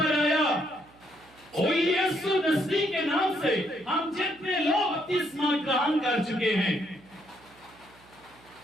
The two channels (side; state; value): right; noise; hum, 27 dB below the sound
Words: आया ओ यीशु मसीह के नाम से हम जितने लोग बपतिस्मा ग्रहण कर चुके हैं,